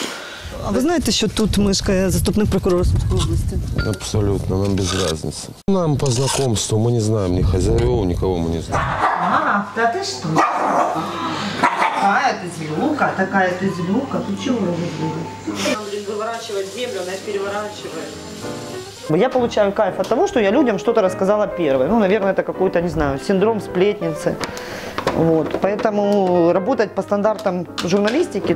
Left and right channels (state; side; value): identical; both; correlation 1.00